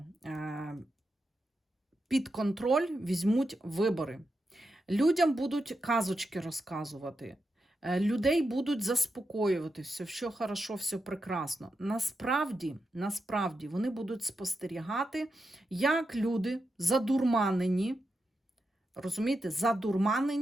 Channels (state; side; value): normal; both; correlation 0.87